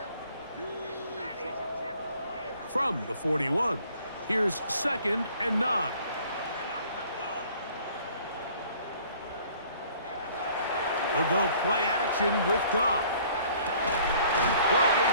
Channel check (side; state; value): both; inverted; correlation -0.55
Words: From the 41, here's 2nd and 9. They'll go play action with Goff. Working